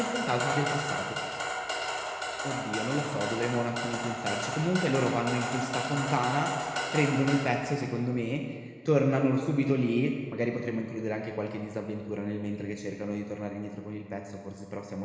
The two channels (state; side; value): identical; both; correlation 1.00